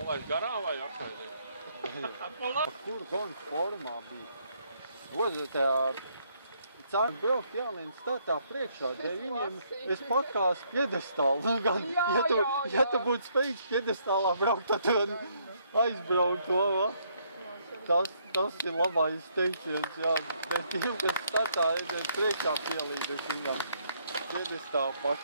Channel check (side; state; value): both; inverted; correlation -0.70